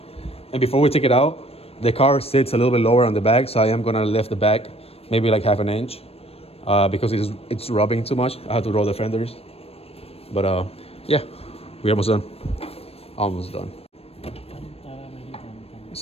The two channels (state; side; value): late; right; 0.28 ms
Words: And before we take it out, the car sits a little bit lower on the back, so I am gonna lift the back maybe like 1/2 inch because it's rubbing too much. I have to roll the fenders. But yeah, we're almost done. Almost done.